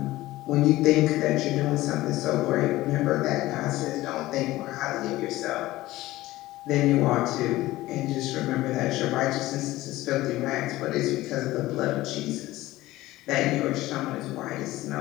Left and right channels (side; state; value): right; quieter; 17.2 dB